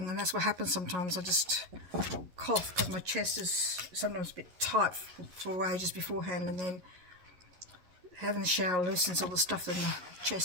and that's what happens sometimes. I just cough because my chest is sometimes a bit tight for ages beforehand, and then having the shower loosens all the stuff in the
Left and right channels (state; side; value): late; left; 11 ms